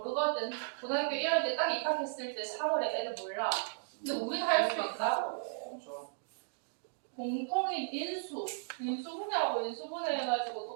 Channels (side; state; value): left; silent; digital silence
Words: 고등학교 1학년 때 딱 입학했을 때 3월에 애들 몰라. 근데 우리는 할 수 있다고. 공통인 인수, 인수분해하고 인수분해 해가지고